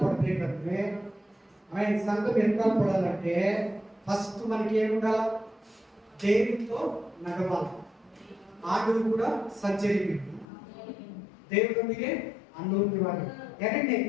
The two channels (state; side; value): drops out; right; at 10.5 s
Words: సంఘం ఎత్తల్పడాలంటే ఫస్ట్ మనకి ఏముండాలి? దేవుడితో నడవాలి. ఆడులు కూడా సర్జరీ ದೇವರೊಂದಿಗೆ ಅನ್ನೋನ್ಯವಾಗಿ.